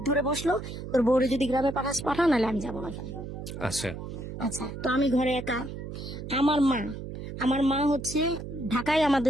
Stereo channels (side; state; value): right; noise; hum, 8 dB below the sound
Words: ধরে বসলো, তোর বউরে যদি গ্রামে পাঠা, নাহলে আমি যাবো না এখানে। আচ্ছা আচ্ছা, তো আমি ঘরে একা। আমার মা হচ্ছে ঢাকায়